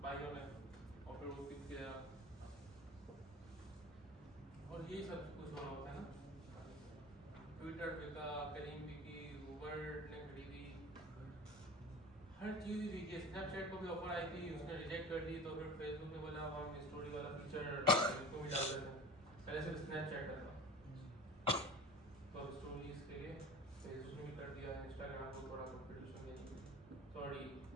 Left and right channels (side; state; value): both; normal; correlation 0.37